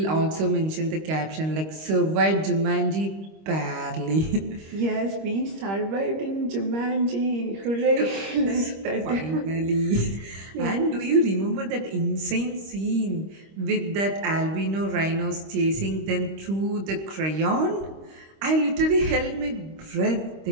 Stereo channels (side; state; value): left; late; 25 ms